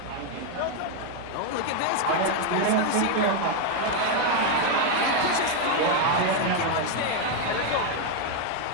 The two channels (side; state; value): both; different; correlation 0.01